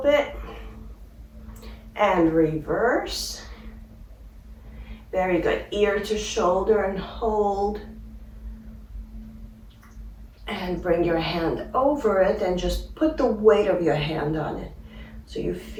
bit. And reverse. Very good. Ear to shoulder and hold. And bring your hand over it and just put the weight of your hand on it. So you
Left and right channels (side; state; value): both; identical; correlation 1.00